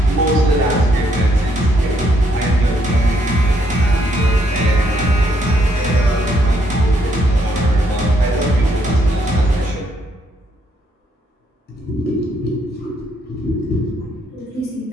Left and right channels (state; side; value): normal; both; correlation 0.72